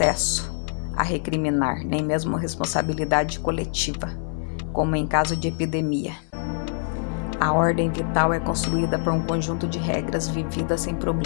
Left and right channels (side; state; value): right; silent; digital silence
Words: a recriminar, nem mesmo responsabilidade coletiva, como em caso de epidemia. A ordem vital é construída por um conjunto de regras vividas sem